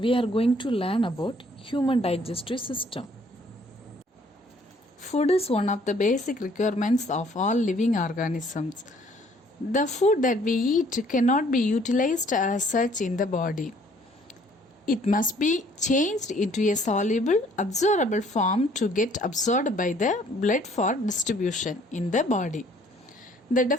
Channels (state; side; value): normal; both; correlation 0.60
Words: are going to learn about human digestive system. Food is one of the basic requirements of all living organisms. The food that we eat cannot be utilized as such in the body. It must be changed into a soluble, absorbable form to get absorbed by the blood for distribution in the body. The